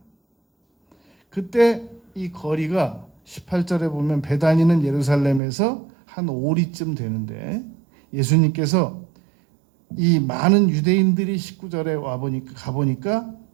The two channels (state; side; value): drops out; left; at 5.4 s